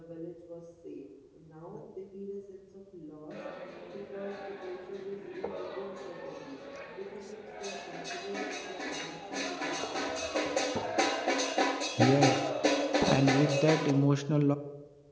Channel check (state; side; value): identical; both; correlation 1.00